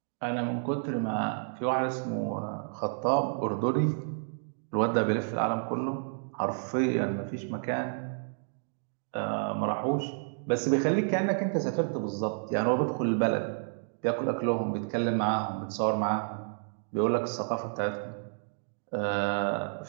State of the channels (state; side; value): silent; left; digital silence